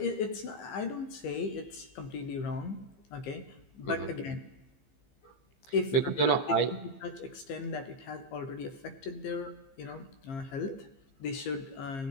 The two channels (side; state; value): right; late; 15 ms